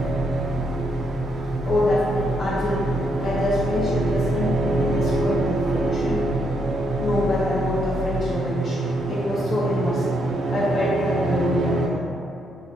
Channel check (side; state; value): both; normal; correlation 0.76